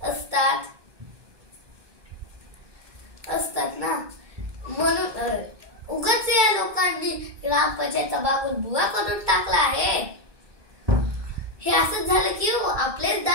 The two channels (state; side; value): late; left; 1.2 ms